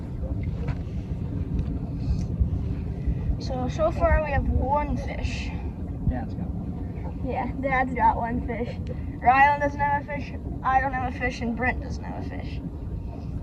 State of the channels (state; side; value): identical; both; correlation 1.00